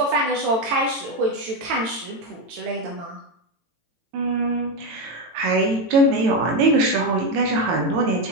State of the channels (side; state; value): left; late; 18 ms